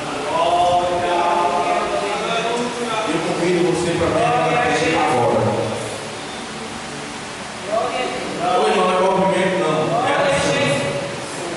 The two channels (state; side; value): identical; both; correlation 1.00